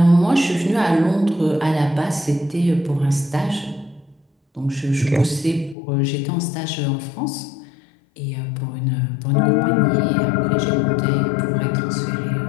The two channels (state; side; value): drops out; right; at 5.8 s